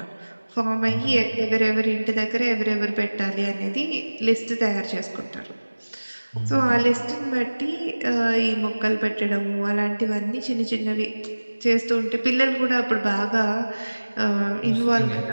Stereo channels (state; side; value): inverted; both; correlation -1.00